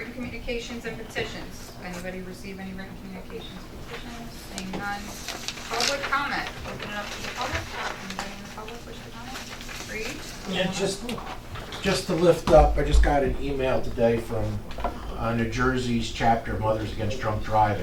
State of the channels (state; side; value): identical; both; correlation 1.00